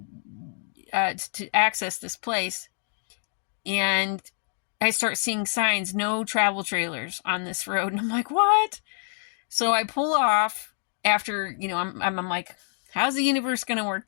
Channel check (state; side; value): silent; right; digital silence